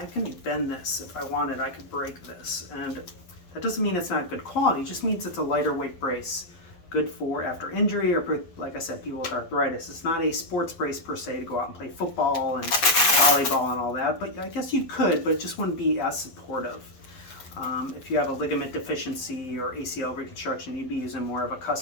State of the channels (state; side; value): late; right; 12 ms